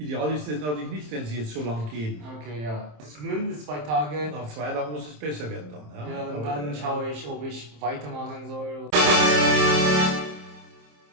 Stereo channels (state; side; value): late; left; 27 ms